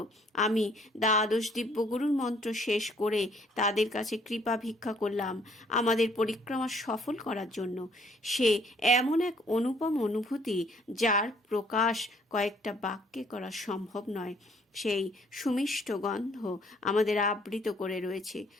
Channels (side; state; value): both; normal; correlation 0.62